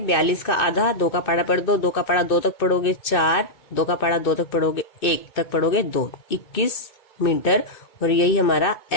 42 का आधा, 2 का पाड़ा पढ़ दो, 2 का पाड़ा 2 तक पढ़ोगे 4, 2 का पढ़ा 2 तक पढ़ोगे 1 तक पढ़ोगे 2, 21 मीटर, और यही हमारा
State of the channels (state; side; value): late; right; 2.6 ms